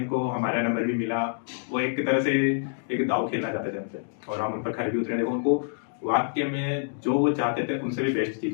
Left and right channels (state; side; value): silent; right; digital silence